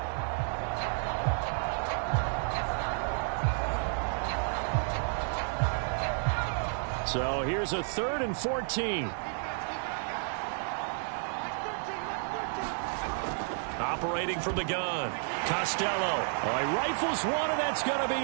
So here's a 3rd and 14. Operating from the gun, Costello. Oh, he rifles one, and that's going to be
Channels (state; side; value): silent; left; 56 dB below the other